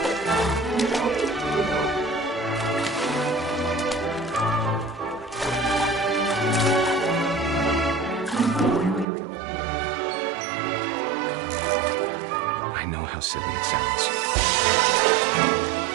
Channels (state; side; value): drops out; left; at 9.1 s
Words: I know how silly it sounds.